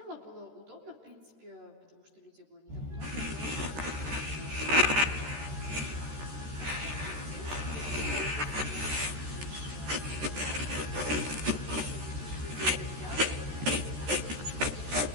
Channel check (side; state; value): left; late; 13 ms